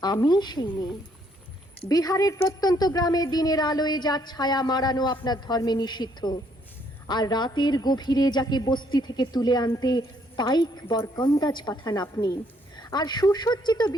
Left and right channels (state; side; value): normal; both; correlation 0.68